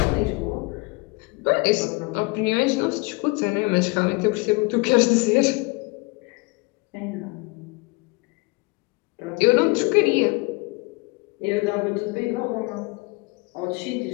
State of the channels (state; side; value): quieter; right; 26.9 dB